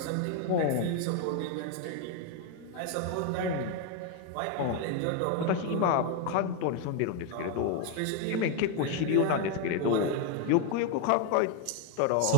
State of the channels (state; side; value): different; both; correlation 0.01